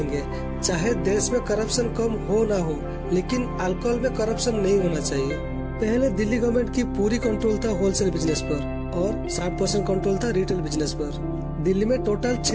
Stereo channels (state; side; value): identical; both; correlation 1.00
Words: चाहे देश में करप्शन कम हो ना हो, लेकिन अल्कोहल में करप्शन नहीं होना चाहिए। पहले दिल्ली गवर्नमेंट की पूरी कंट्रोल था होलसेल बिजनेस पर और 60% कंट्रोल था रिटेल बिजनेस पर। दिल्ली में टोटल